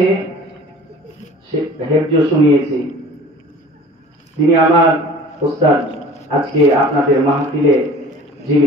হেফজ শুনিয়েছি, তিনি আমার উস্তাদ। আজকে আপনাদের মাহফিলে যিনি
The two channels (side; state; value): both; normal; correlation 0.45